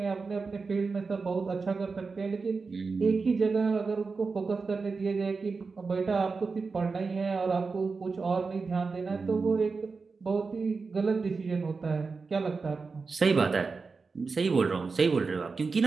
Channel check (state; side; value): quieter; left; 4.5 dB